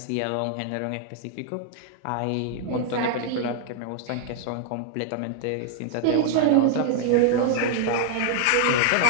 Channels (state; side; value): different; both; correlation 0.00